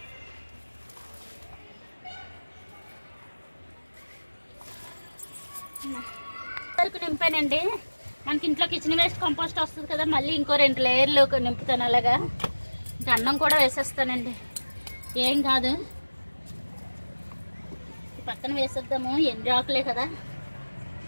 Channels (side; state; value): both; inverted; correlation -1.00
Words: వరకు నింపానండి. మనకి ఇంట్లో కిచెన్ వేస్ట్ కంపోస్ట్ వస్తుంది కదా, మళ్ళీ ఇంకో 2 లేయర్లు నింపుతాను. అలాగా ఇంకా అన్నం కూడా వేసేస్తానండి, ఏం కాదు. పక్కన వేసేద్దాము, ఎండు ఆకులే కదా.